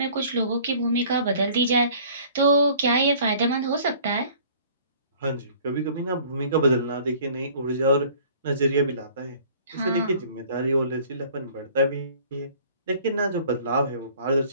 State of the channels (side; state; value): both; inverted; correlation -0.51